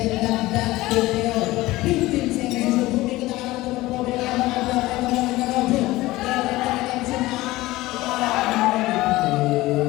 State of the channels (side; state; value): right; quieter; 18.4 dB